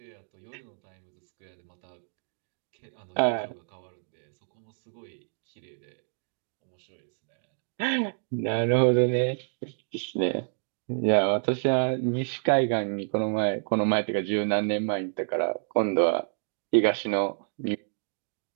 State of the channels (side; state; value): left; silent; digital silence